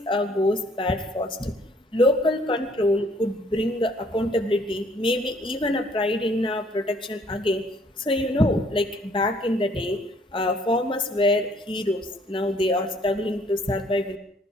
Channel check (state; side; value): normal; both; correlation 0.61